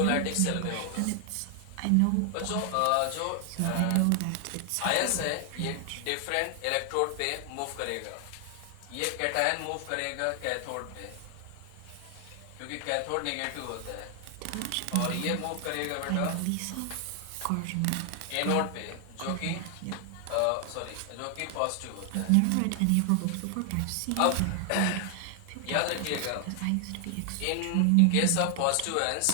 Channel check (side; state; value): both; different; correlation 0.00